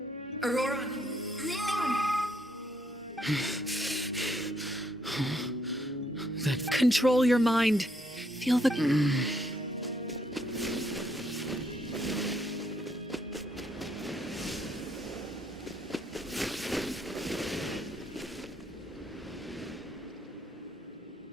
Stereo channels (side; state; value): both; normal; correlation 0.72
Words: Auroran! Control your mind. Feel the...